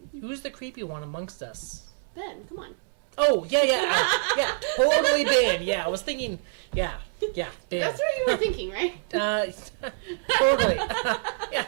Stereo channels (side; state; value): left; silent; 61 dB below the other